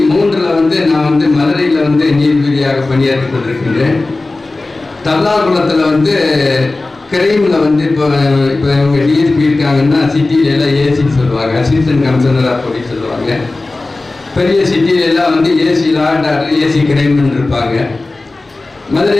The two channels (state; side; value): quieter; right; 3.2 dB